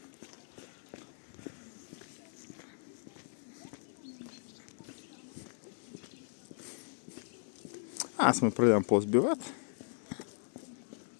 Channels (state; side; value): silent; right; digital silence